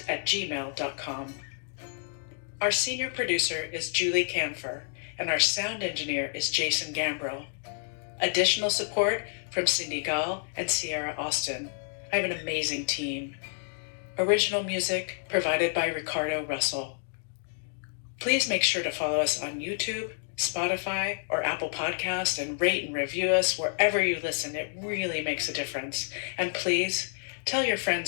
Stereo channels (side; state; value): right; silent; digital silence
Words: Our senior producer is Julie Camphor, and our sound engineer is Jason Gambrill. Additional support from Cindy Gall and Sierra Austin. I have an amazing team. Original music provided by Ricardo Russell. Please make sure to follow us on YouTube, Spotify, or Apple Podcast and rate and review us wherever you listen. It really makes a difference. And please tell your